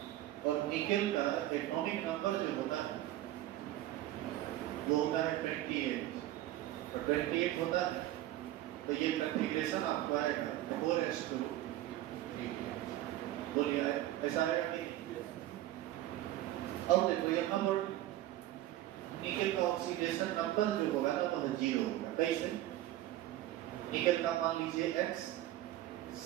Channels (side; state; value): left; quieter; 14.5 dB